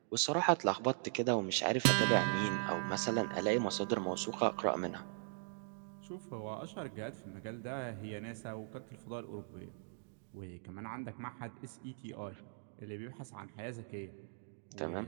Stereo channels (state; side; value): silent; left; digital silence